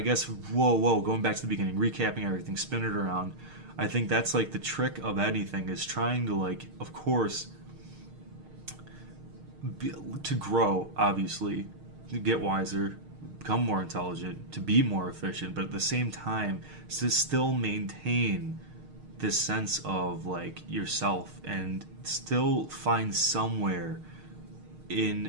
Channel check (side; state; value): left; late; 6.5 ms